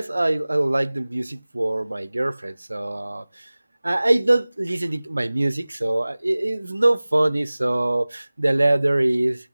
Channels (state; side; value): inverted; both; correlation -0.99